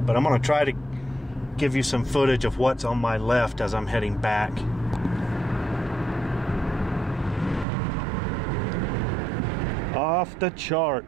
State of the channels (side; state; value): left; drops out; at 7.7 s